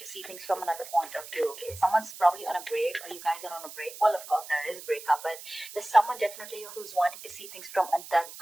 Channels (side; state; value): right; noise; hiss, 14 dB below the sound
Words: see things from another point of view. Okay, someone's probably on a break, or you guys are on a break. Well, of course there is a breakup, but there's someone definitely who's wanting to see things from